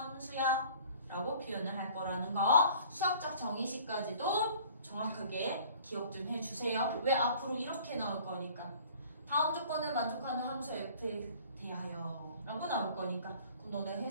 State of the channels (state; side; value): inverted; both; correlation -0.51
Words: 라고 표현을 할 거라는 거. 수학적 정의식까지도 정확하게 기억 좀 해주세요. 왜? 앞으로 이렇게 나올 거니까. 다음 조건을 만족하는 함수 F에 대하여 라고 나올 거니까. 그럼 너네